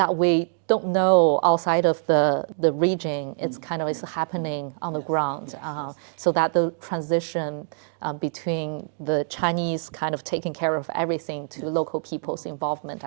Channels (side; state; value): left; silent; digital silence